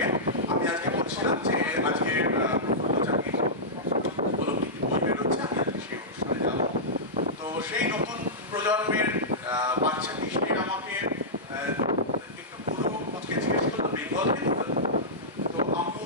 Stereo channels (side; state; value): both; normal; correlation -0.14